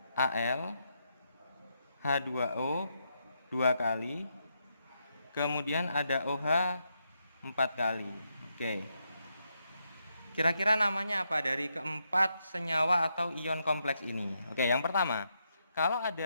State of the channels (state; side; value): inverted; both; correlation -0.81